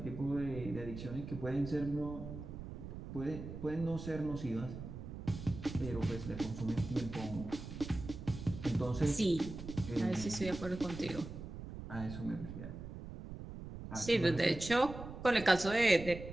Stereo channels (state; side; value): noise; right; rumble, 10 dB below the sound